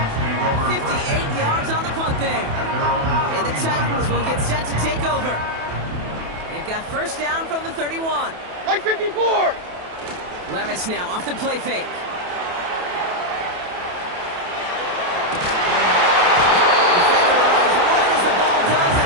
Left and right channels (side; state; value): left; late; 28 ms